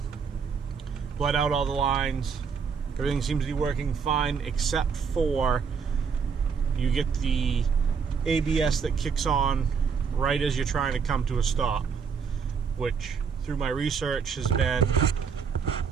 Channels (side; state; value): left; quieter; 6.1 dB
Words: bled out all the lines. Everything seems to be working fine except for you get the ABS that kicks on right as you're trying to come to a stop, which through my research has been